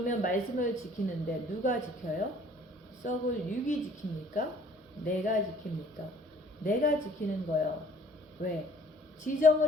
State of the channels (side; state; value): both; normal; correlation 0.55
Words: 말씀을 지키는데 누가 지켜요? 썩을 육이 지킵니까? 내가 지킵니까? 내가 지키는 거예요. 왜?